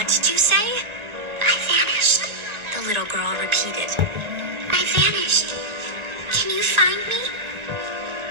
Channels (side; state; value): left; late; 1.4 ms